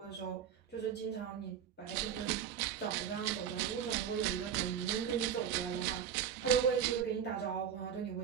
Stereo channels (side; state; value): left; quieter; 8.4 dB